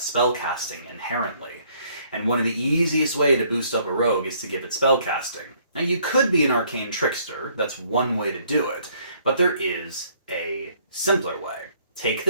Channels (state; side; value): inverted; both; correlation -0.64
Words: inherently. And one of the easiest way to boost up a rogue is to give it spellcasting. Now you could be an arcane trickster, that's one way to do it, but there is a simpler way. Take